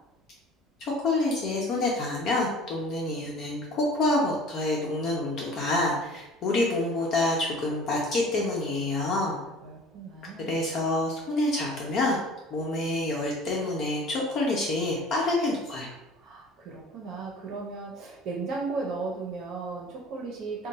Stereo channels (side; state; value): both; normal; correlation 0.46